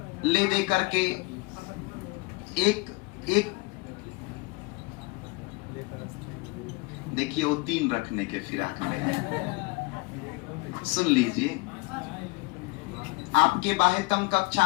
ले दे करके एक देखिए वो 3 रखने के फिराक में। सुन लीजिए, आपके बाह्यतम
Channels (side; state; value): right; quieter; 26.4 dB